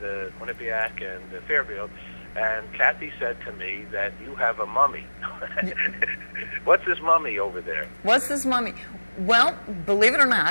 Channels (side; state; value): both; inverted; correlation -1.00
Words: Quinnipiac and Fairfield, and Kathy said to me that you have a mummy. What's this mummy over there? What's this mummy? Well, believe it or